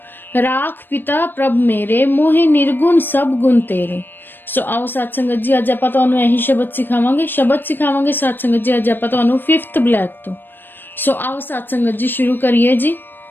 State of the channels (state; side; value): late; right; 0.095 ms